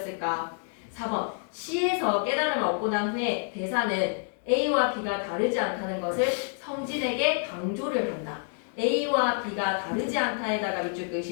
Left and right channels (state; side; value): silent; right; 56 dB below the other